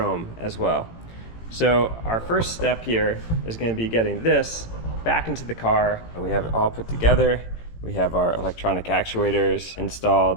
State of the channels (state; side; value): late; right; 18 ms